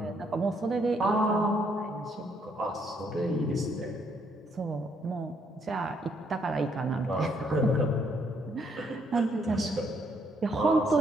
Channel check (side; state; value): both; normal; correlation 0.71